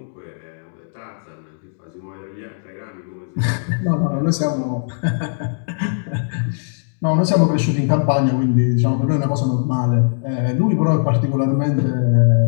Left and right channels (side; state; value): right; silent; digital silence